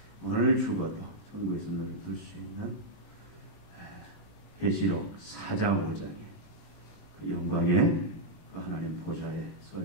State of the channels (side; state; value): right; late; 19 ms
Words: 오늘 죽어도 천국에서 눈을 뜰 수 있는 계시록 4장 5장의 그 영광의 그 하나님 보좌에 설